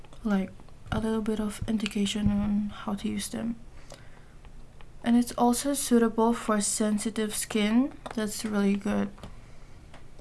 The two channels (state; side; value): identical; both; correlation 1.00